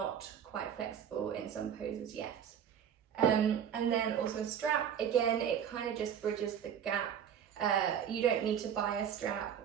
quite flexible in some poses yet. And then also a strap. Again, it kind of just bridges the gap. You don't need to buy a strap.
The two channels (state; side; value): quieter; left; 8.6 dB